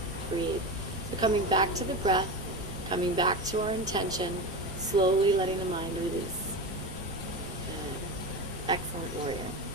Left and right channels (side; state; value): both; normal; correlation 0.23